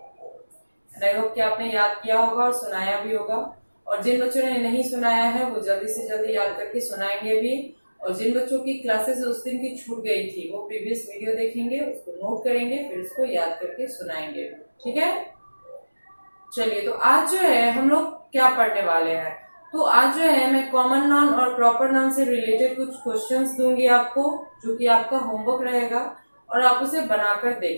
आई होप कि आपने याद किया होगा और सुनाया भी होगा। और जिन बच्चों ने नहीं सुनाया है वो जल्दी से जल्दी याद करके सुनाएंगे भी। और जिन बच्चों की क्लासेस उस दिन की छूट गई थी वो प्रीवियस वीडियो देखेंगे, उसको नोट करेंगे, फिर उसको याद करके सुनाएंगे, ठीक है। चलिए, तो आज जो है हम लोग क्या पढ़ने वाले हैं, तो आज जो है मैं कॉमन नाउन और प्रॉपर नाउन से रिलेटेड कुछ क्वेश्चंस दूंगी आपको, जो कि आपका होमवर्क रहेगा और आप उसे बनाकर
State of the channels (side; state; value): both; inverted; correlation -1.00